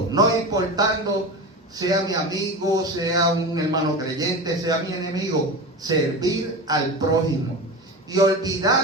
no importando sea mi amigo, sea un hermano creyente, sea mi enemigo. Servir al prójimo y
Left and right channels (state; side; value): normal; both; correlation 0.26